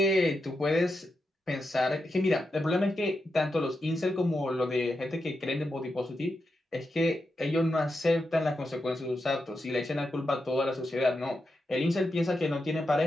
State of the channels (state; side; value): normal; both; correlation 0.87